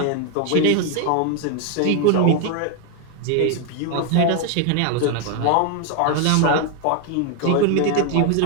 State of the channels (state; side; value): different; both; correlation 0.01